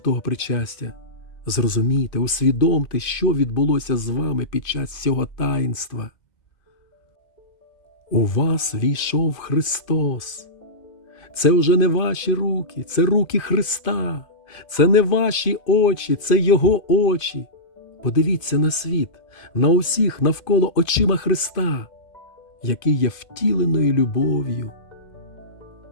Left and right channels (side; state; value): right; late; 2.5 ms